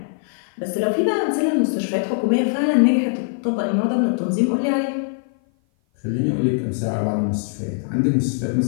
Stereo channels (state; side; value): silent; right; 56 dB below the other